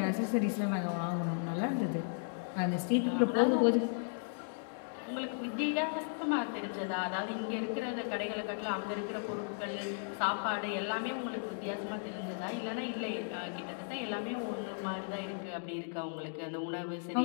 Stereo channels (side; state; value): right; silent; digital silence